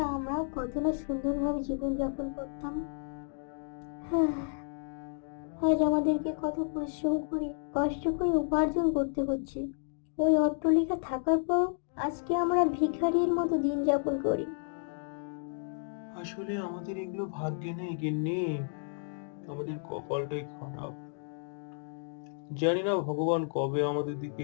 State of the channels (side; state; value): right; silent; 57 dB below the other